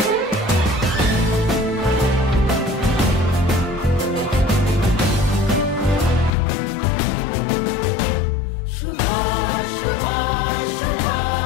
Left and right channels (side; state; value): right; drops out; at 6.4 s